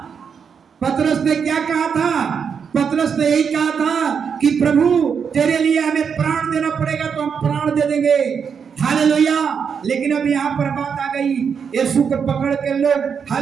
पतरस ने क्या कहा था? पतरस ने यही कहा था कि प्रभु तेरे लिए हमें प्राण देना पड़ेगा तो हम प्राण दे देंगे। हालेलुया, लेकिन अब यहाँ पर बात आ गई, यीशु को पकड़ के लोग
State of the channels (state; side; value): quieter; left; 6.7 dB